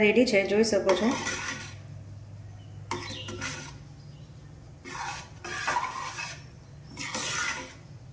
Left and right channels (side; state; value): both; identical; correlation 1.00